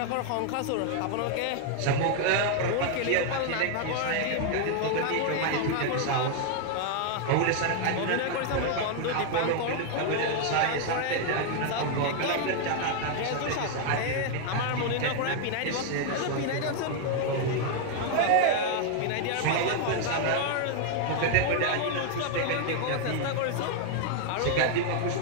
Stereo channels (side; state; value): both; different; correlation 0.00